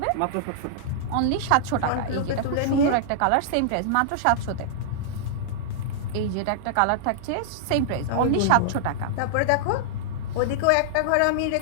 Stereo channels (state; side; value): different; both; correlation -0.01